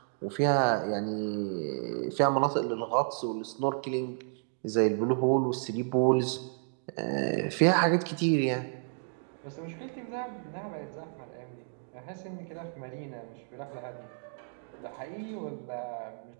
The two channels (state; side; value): silent; left; digital silence